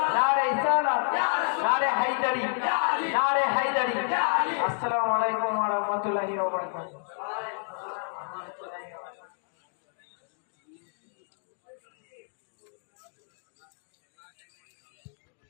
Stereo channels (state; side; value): silent; right; 58 dB below the other